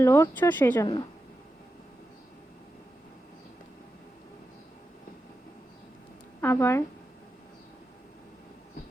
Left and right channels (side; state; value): both; normal; correlation 0.89